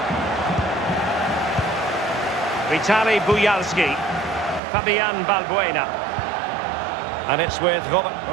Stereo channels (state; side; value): drops out; left; at 4.6 s